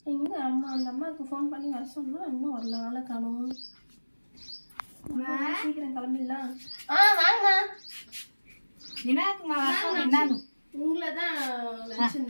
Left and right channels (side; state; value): both; inverted; correlation -1.00